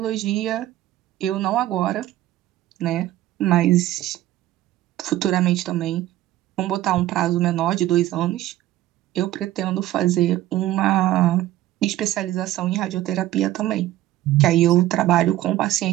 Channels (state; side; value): quieter; left; 14.7 dB